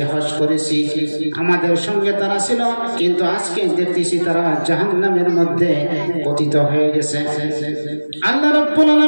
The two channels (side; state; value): both; inverted; correlation -1.00